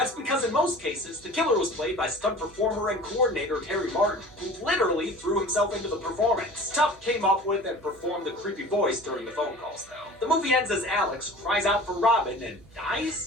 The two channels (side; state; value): right; noise; hum, 26 dB below the sound